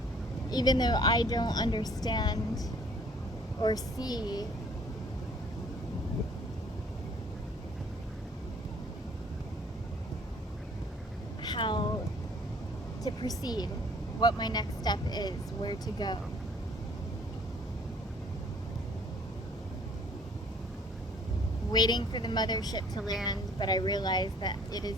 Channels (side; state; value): both; normal; correlation 0.57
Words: Even though I don't understand or see how to proceed, what my next step is, where to go. Waiting for the mothership to land, but I realize that it